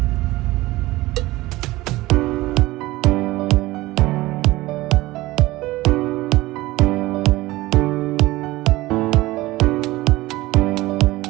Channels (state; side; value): quieter; left; 18.8 dB